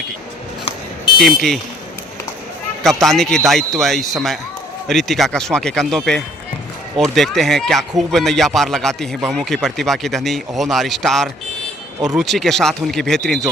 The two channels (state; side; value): normal; both; correlation 0.59